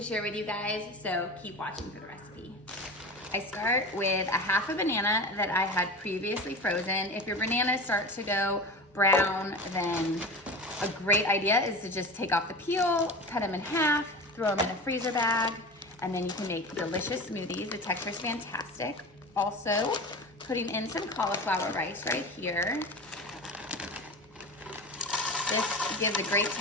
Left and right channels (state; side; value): normal; both; correlation 0.30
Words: share with you guys, so keep watching for the recipe. I start with a half a banana that I had previously frozen. If your bananas start to go brown, then a great idea is to just take off the peel, cut them in half, throw them in a freezer bag, and then you can make delicious smoothies. The texture is fantastic. Also, putting in some cauliflower rice right here. This gives a great